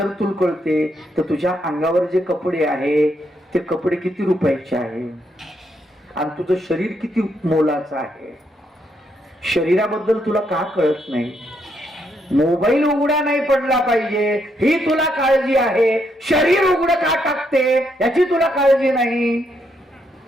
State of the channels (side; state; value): both; normal; correlation 0.77